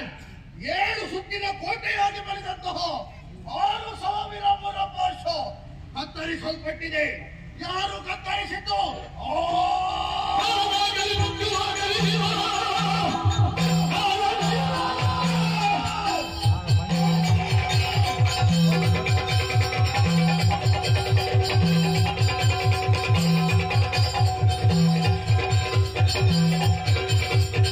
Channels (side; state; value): both; identical; correlation 1.00